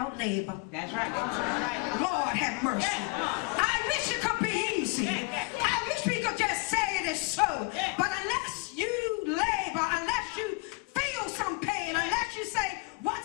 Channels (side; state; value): right; quieter; 29.2 dB